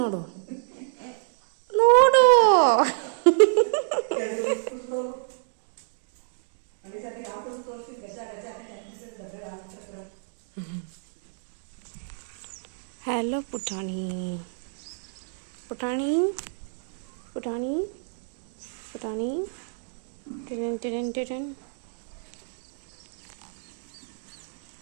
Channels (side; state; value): left; silent; digital silence